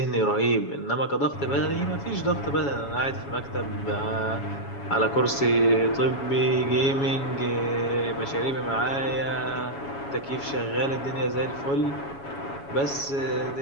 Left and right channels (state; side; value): late; right; 7.2 ms